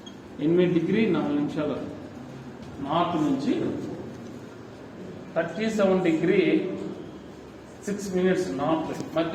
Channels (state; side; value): identical; both; correlation 1.00